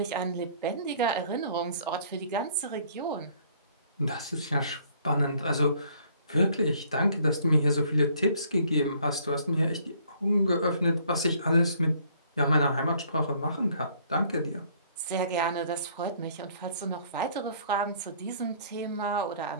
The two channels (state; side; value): inverted; both; correlation -0.60